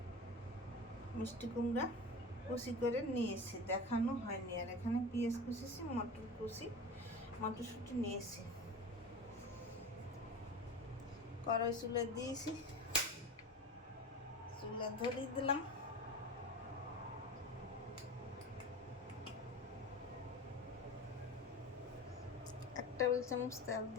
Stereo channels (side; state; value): both; normal; correlation 0.31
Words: মিষ্টি কুমড়া কুচি করে নিয়েছি, দেখানো হয়নি। আর এখানে পেঁয়াজ কুচিছি, মটর কুচি, মটরশুঁটি নিয়েছি। কড়াই চুলে দিয়েছি, চুলা ধরিয়ে দিলাম। এক টেবিল চামচ তেল